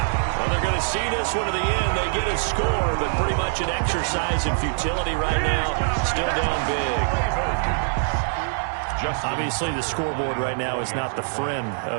Well, they're going to see this one to the end. They get a score, but pretty much an exercise in futility right now. Still down big. Obviously, the scoreboard right now is not the friend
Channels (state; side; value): silent; left; digital silence